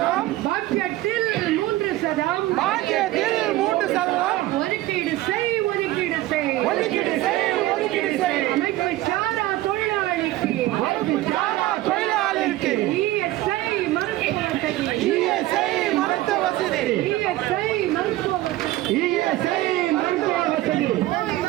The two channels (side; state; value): left; quieter; 16.4 dB